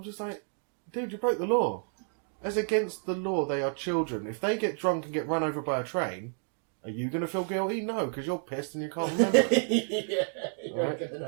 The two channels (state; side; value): silent; left; 58 dB below the other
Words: just like, dude, you broke the law. As against the law, they are children. If they get drunk and get run over by a train, are you going to feel guilty? No, because you're pissed and you can't remember. Yeah, you ain't going to